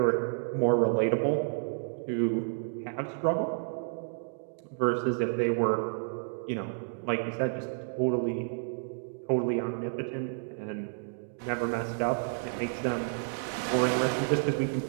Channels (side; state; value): left; silent; digital silence